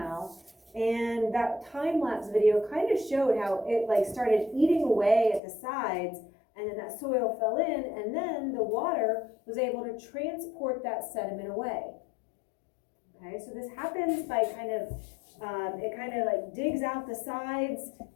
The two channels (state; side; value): drops out; right; at 5.4 s